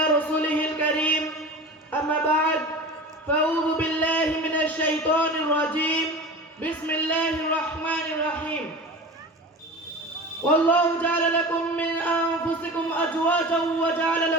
رسوله الكريم أما بعد فأعوذ بالله من الشيطان الرجيم بسم الله الرحمن الرحيم والله جعل لكم من أنفسكم أزواجا وجعل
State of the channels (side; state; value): both; normal; correlation 0.33